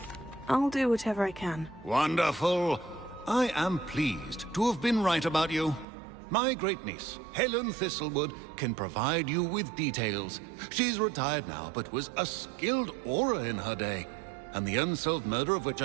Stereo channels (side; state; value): left; drops out; at 5.9 s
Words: I'll do whatever I can. Wonderful. I am pleased to have been right about you. My great-niece, Helen Thistlewood, can provide you with details. She's retired now, but was a skilled aura in her day. And the unsolved murder of which